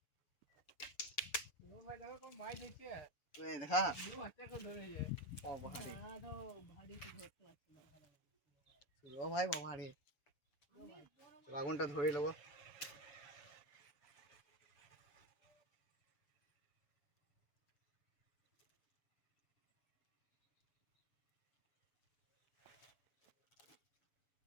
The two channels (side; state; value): right; late; 7.0 ms